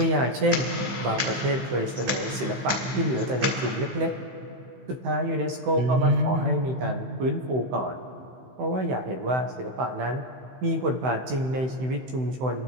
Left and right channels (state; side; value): late; left; 16 ms